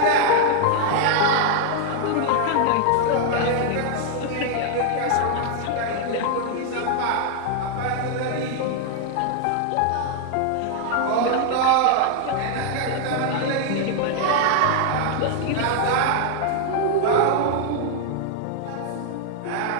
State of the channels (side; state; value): both; different; correlation 0.00